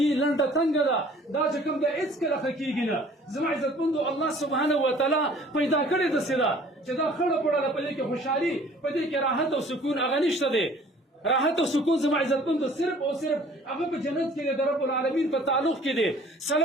لنډه تنګه ده دا چې کوم دی هېڅکله ښه کېږي نه زما عزتمندو الله سبحانه وتعالی پیدا کړې داسې ده چې دا خړه پړه په دې کې خوشحالي په دې کې راحت او سکون هغه نشته دی راحت او سکون زما عزتمندو صرف او صرف هغه په جنت کې د رب العالمین په تعلق کې دی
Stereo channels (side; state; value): both; normal; correlation 0.53